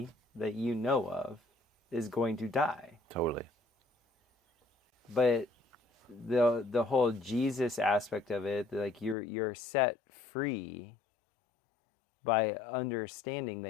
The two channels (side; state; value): right; drops out; at 9.2 s